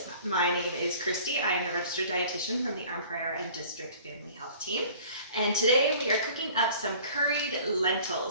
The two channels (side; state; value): both; inverted; correlation -0.48